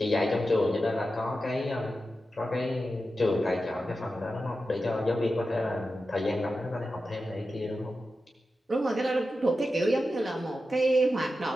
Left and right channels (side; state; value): both; normal; correlation 0.91